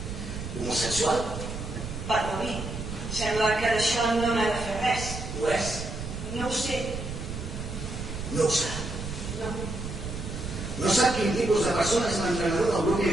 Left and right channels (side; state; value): right; noise; rumble, 7 dB below the sound